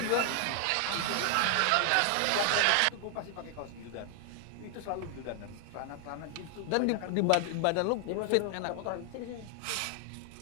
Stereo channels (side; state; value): both; different; correlation 0.00